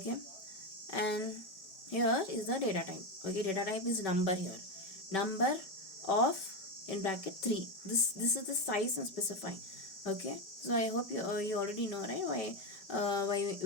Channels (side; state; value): right; late; 4.8 ms